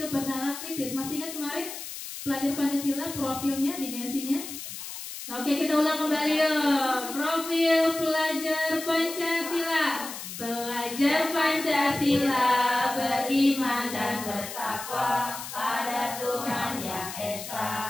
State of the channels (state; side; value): noise; left; hiss, 9 dB below the sound